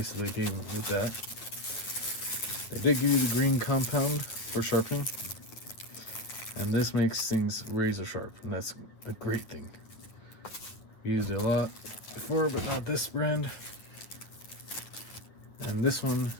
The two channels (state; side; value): late; right; 9.3 ms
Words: that they gave me with that. They did give you the green compound for sharpening, and this makes things razor sharp, and that's a great thing. We used it a lot before, but not this brand. And this one